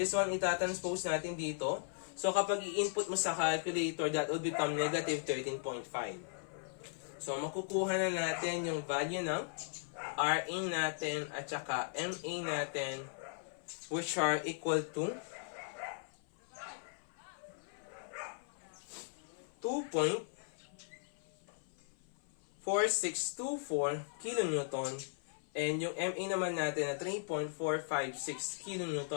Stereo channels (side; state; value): right; silent; 53 dB below the other